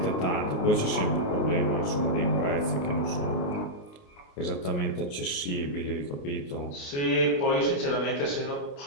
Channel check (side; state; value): right; late; 28 ms